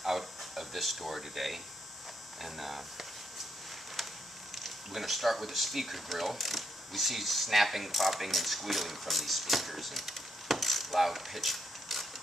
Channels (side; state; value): both; normal; correlation 0.77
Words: out of this door today, and we're going to start with the speaker grill. We see snapping, popping, and squealing from these speakers, and loud pitch